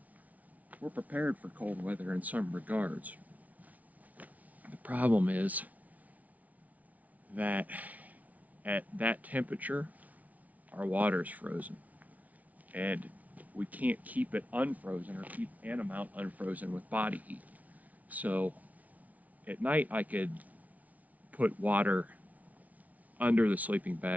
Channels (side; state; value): left; late; 0.072 ms